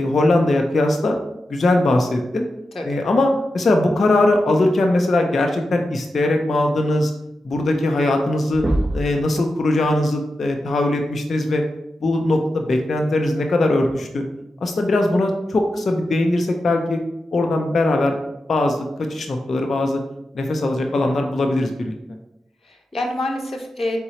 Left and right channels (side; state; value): both; normal; correlation 0.90